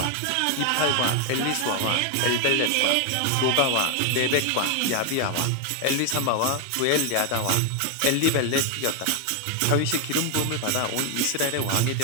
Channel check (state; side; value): different; both; correlation 0.01